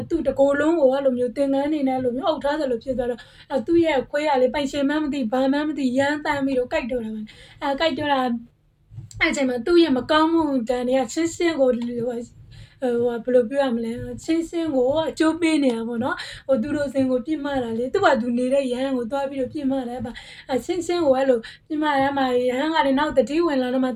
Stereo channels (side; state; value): both; identical; correlation 1.00